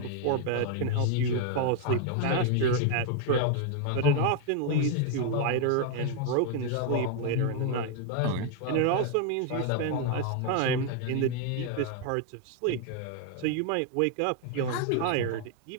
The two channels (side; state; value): both; different; correlation 0.00